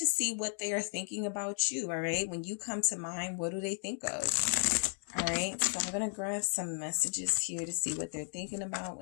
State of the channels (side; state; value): right; silent; 55 dB below the other